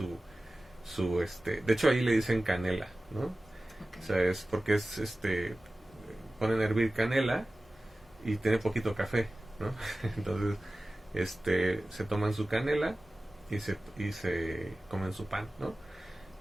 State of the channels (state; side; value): normal; both; correlation 0.96